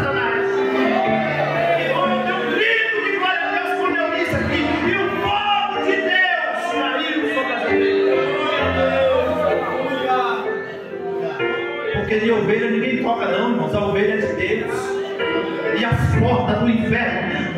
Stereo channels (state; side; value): identical; both; correlation 1.00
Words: Irmão, eu tenho um grito de glória a Deus quando eu disse aqui: e o fogo de Deus caiu sobre as ovelhas. Porque de ovelha ninguém toca não, irmãos, a ovelha é de Deus. E as portas do